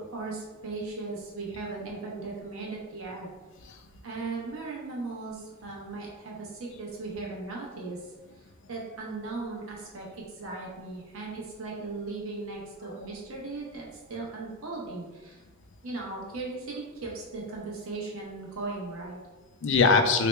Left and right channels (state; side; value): normal; both; correlation 0.09